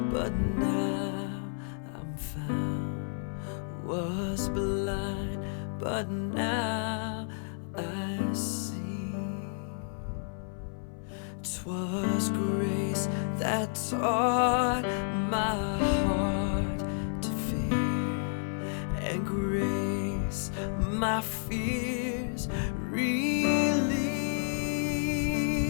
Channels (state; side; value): silent; right; 57 dB below the other